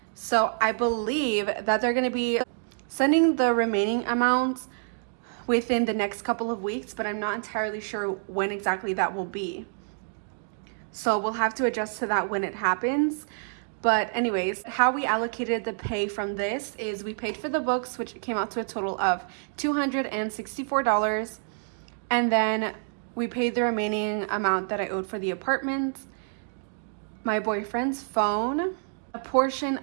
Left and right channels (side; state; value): left; silent; digital silence